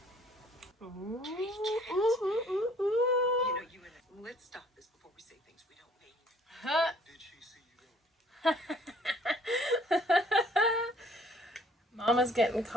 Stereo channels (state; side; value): normal; both; correlation 0.59